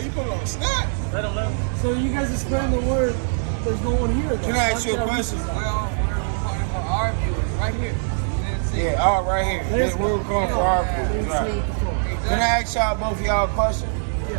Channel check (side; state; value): left; silent; 61 dB below the other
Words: put it on Snap? So you guys are spreading the word. There's no one here. Can I ask you a question? We're recording for our viewers right here. You didn't see it. Yeah, all right here. Let's We're go. going for our food. Let's Right. see what the phone. Can I ask y'all both of y'all a question?